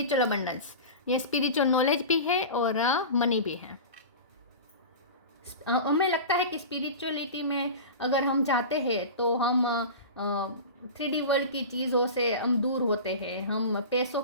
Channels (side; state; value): both; inverted; correlation -0.31